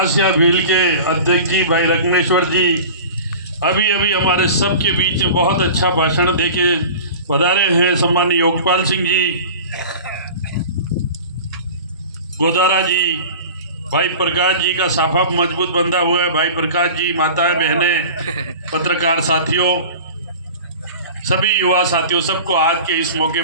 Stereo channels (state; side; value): inverted; both; correlation -0.37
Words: भील के अध्यक्ष जी भाई रत्नेश्वर जी, अभी अभी हमारे सबके बीच में बहुत अच्छा भाषण देके पधारे हैं सम्मान्य योगपाल सिंह जी, गोदारा जी, भाई प्रकाश जी का साफा मजबूत बंधा हुआ है, भाई प्रकाश जी, माताएं बहनें, पत्रकार साथियों, सभी युवा साथियों, सबको आज के इस मौके